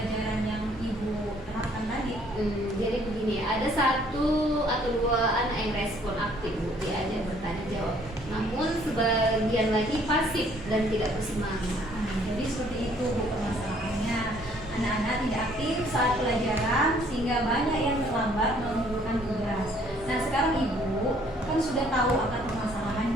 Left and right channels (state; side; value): normal; both; correlation 0.61